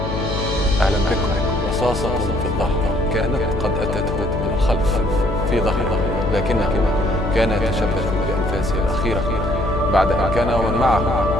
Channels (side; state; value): left; noise; hum, 3 dB below the sound